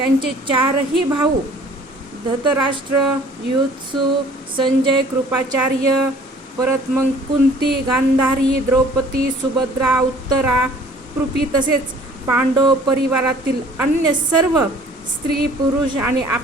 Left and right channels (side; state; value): both; normal; correlation 0.53